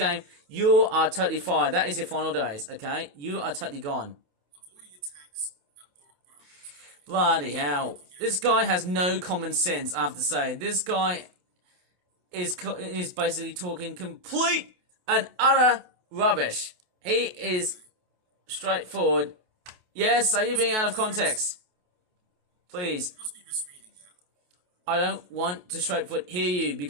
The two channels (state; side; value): late; left; 28 ms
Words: you are totally fired. That is your final days, okay? You are totally gone. Bloody hell. This guy has no common sense, I have to say. This guy is basically talking complete and utter rubbish. He is straightforward. Yes, are you being out of context? Please. You must be misreading that. I don't want to straightforward hear you